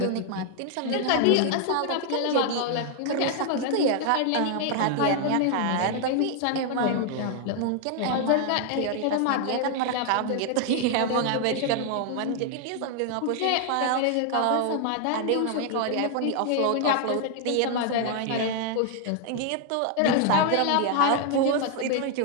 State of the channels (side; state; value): both; different; correlation 0.00